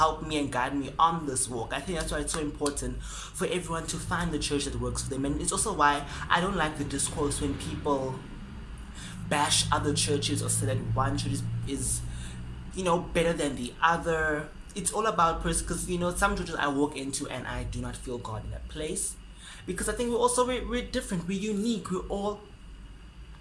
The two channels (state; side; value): identical; both; correlation 1.00